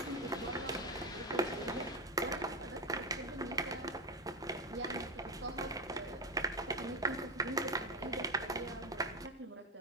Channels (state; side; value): normal; both; correlation 0.11